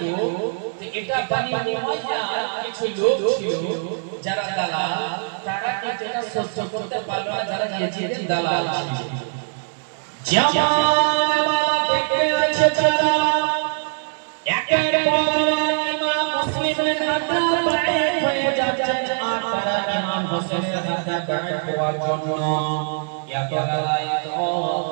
এটা বনি উমাইয়া কিছু লোক ছিল যারা দালাল, তারা কিন্তু এটা সহ্য করতে পারল না, যারা ইয়াজিদের দালাল ছিল। জামাল দেখতে আছে যারা একের পর ইমাম মুসলিমের হাতে বাড়িত হয়ে যাচ্ছে, আর তারা ইমাম হোসেনের হাতে বাড়িত হওয়ার জন্য এত লড়াই তো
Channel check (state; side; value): silent; left; 64 dB below the other